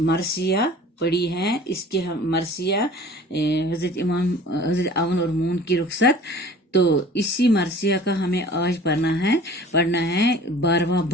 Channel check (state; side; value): normal; both; correlation 0.46